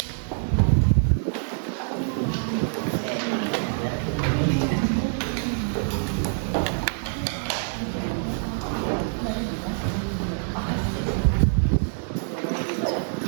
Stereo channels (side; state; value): left; silent; digital silence